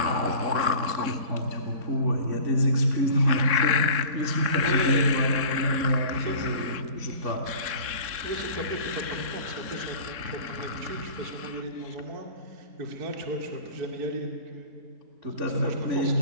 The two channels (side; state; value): left; late; 3.7 ms